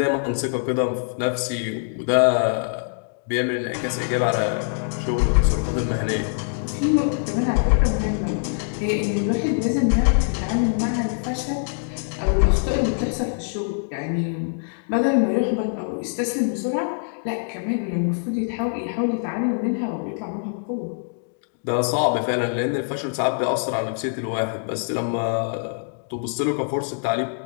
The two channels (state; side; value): silent; right; digital silence